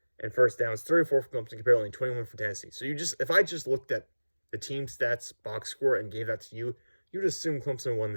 And first downs, 34 for Clemson compared to only 21 for Tennessee. So if I just looked at the team stats box score and gave that to you, you'd assume Clemson won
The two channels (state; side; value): inverted; both; correlation -1.00